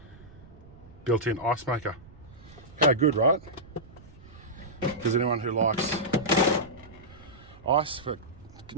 Built-in ice maker. How good, right? Because anyone who likes ice for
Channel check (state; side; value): noise; right; rumble, 22 dB below the sound